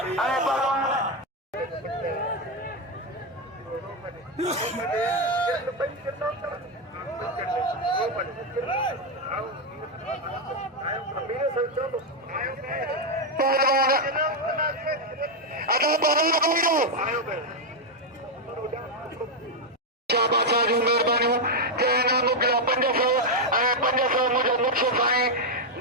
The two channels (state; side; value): normal; both; correlation 0.03